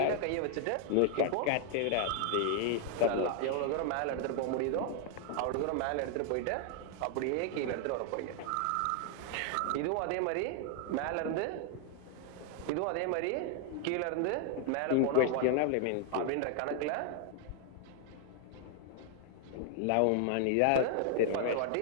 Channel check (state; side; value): different; both; correlation 0.00